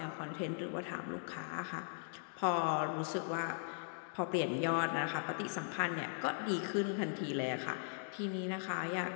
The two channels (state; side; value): silent; right; digital silence